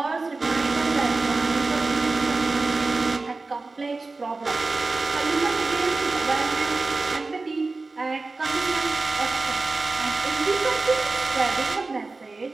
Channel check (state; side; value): quieter; left; 3.6 dB